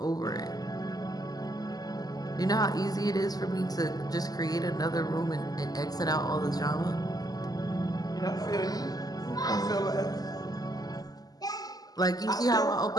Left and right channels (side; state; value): right; late; 0.18 ms